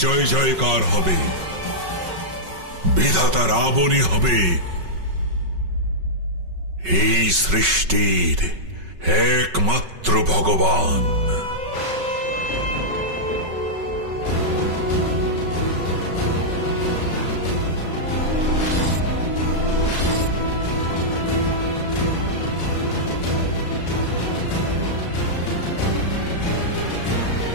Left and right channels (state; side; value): late; left; 5.3 ms